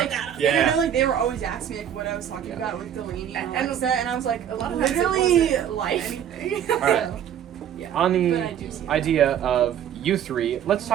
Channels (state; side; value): quieter; left; 9.6 dB